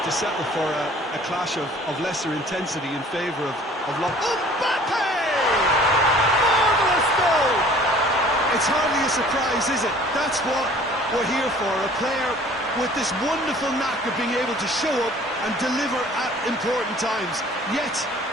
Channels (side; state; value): both; normal; correlation 0.51